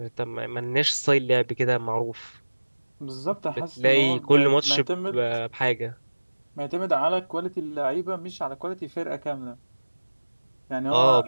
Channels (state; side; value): inverted; both; correlation -1.00